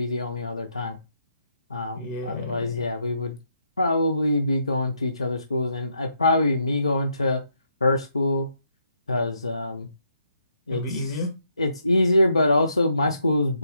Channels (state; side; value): inverted; both; correlation -0.76